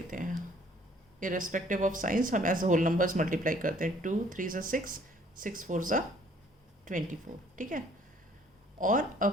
हैं. इर्रेस्पेक्टिव ऑफ साइंस हम एज होल नंबर्स मल्टीप्लाई करते हैं. 2 3 6, 6 4 24. ठीक है. और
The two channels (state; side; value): normal; both; correlation 0.59